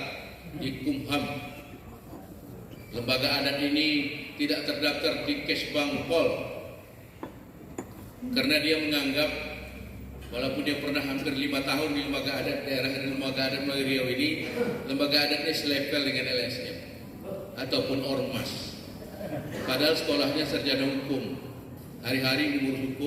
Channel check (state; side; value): identical; both; correlation 1.00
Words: di Kumham. Lembaga adat ini tidak terdaftar di Kesbang Pol, karena dia menganggap walaupun dia pernah hampir 5 tahun di Lembaga Adat Daerah dan Lembaga Adat Melayu Riau ini, Lembaga Adatnya selevel dengan LSM ataupun Ormas. Padahal sekolahnya sarjana hukum, hari-hari ngurus